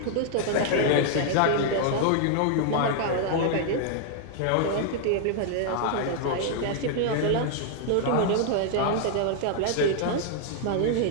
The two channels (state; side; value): different; both; correlation 0.00